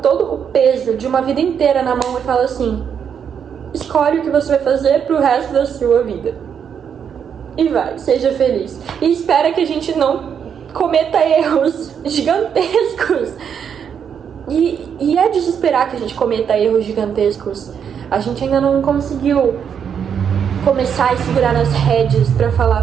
o peso de uma vida inteira na mão e fala assim: escolhe o que você vai fazer pro resto da sua vida. E vai, seja feliz. E espera que a gente não cometa erros gigantescos esperar que a gente cometa erros gigantescos. A gente ainda não conseguiu começar a segurar nas rédeas pra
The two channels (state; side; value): quieter; left; 7.7 dB